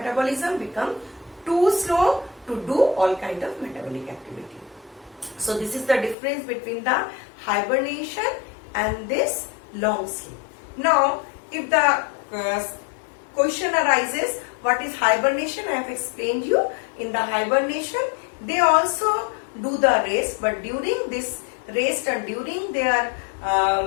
become too slow to do all kind of metabolic activity. So this is the difference between the hibernation and this long sleep. Now if the question arises, what is hibernation? I have explained you. In the hibernation they also do the rest, but during this rest and during their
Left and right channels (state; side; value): drops out; right; at 6.2 s